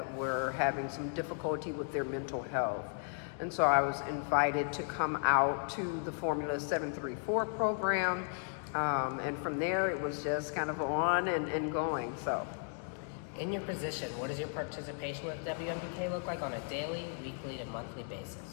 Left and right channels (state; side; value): silent; right; 54 dB below the other